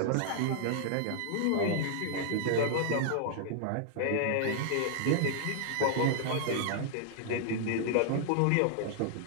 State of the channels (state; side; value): different; both; correlation -0.01